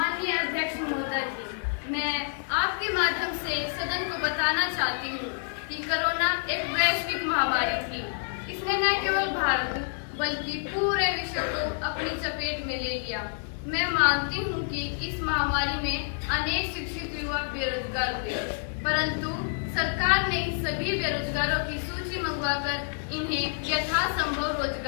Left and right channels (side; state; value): right; silent; digital silence